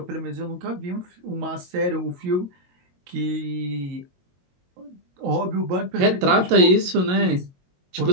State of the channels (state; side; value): late; left; 22 ms